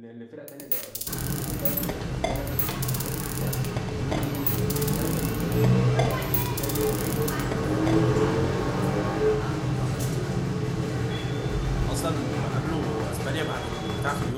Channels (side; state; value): both; identical; correlation 1.00